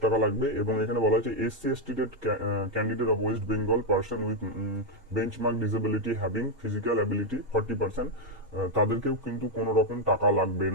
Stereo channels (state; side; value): normal; both; correlation 0.02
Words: টাকা লাগবে। এবং এখানে বলা হয়েছে SC/ST candidate of West Bengal person with benchmark disability having physical ability 40%, তাদেরকেও কিন্তু কোনো রকম টাকা লাগবে